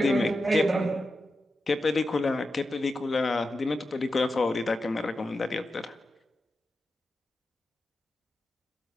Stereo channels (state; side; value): normal; both; correlation 0.90